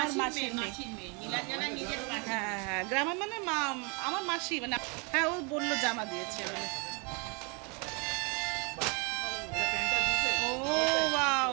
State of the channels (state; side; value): quieter; left; 32.9 dB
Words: মাসির মেয়ে। মাসির মেয়ে। নীলাঞ্জনা নিজের মাসি। হ্যাঁ হ্যাঁ, গ্রামের মানে আমার মাসি মানে। হ্যাঁ ও বললো জামা দিয়েছে বলে। ও ওয়াও,